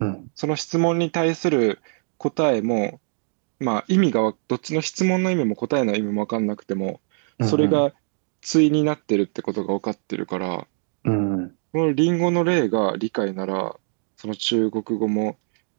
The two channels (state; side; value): silent; left; 61 dB below the other